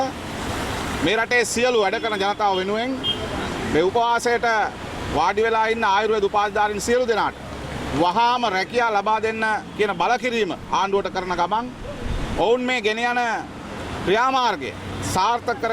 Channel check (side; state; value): both; identical; correlation 1.00